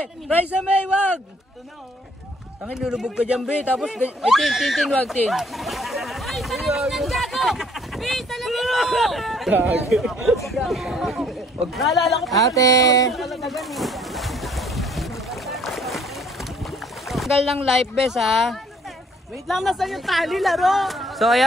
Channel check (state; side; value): normal; both; correlation 0.61